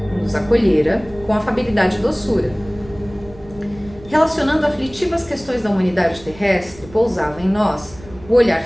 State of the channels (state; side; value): noise; right; rumble, 20 dB below the sound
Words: nos acolhera com afabilidade e doçura. Relacionando aflitivas questões da humanidade terrestre, pousava em nós o olhar